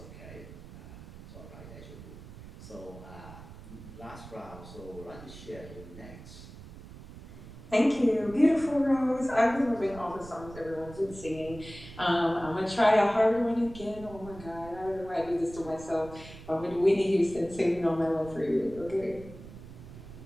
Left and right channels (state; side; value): noise; right; rumble, 16 dB below the sound